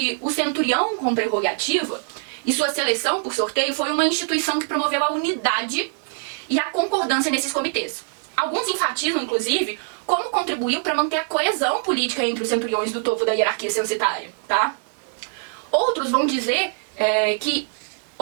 o centurião com prerrogativa e sua seleção por sorteio foi uma instituição que promoveu a unidade e a concordância nesses comitês. Alguns enfatizam, inclusive, como contribuiu para manter a coesão política entre os centuriões do topo da hierarquia censitária, tá? Outros vão dizer que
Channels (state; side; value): silent; left; digital silence